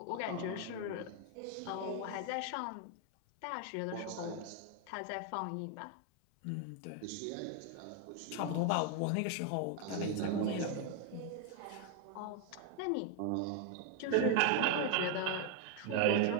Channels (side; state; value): both; different; correlation 0.01